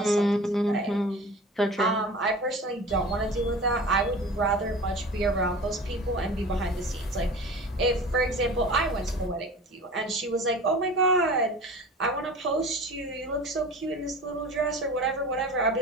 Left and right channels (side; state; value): both; normal; correlation 0.38